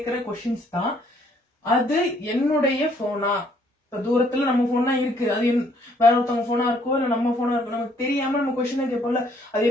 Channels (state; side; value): normal; both; correlation 0.65